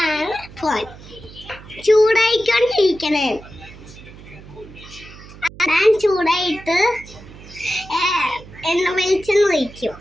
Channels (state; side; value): noise; right; hum, 18 dB below the sound